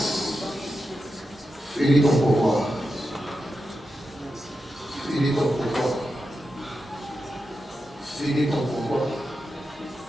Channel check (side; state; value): both; normal; correlation 0.89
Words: Finis ton pouvoir. Finis ton pouvoir. Finis ton pouvoir.